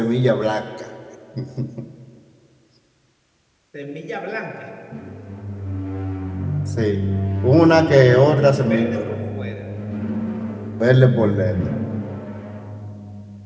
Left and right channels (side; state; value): both; identical; correlation 1.00